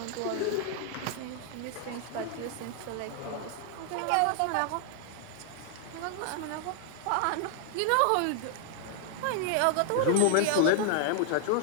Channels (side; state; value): both; different; correlation 0.00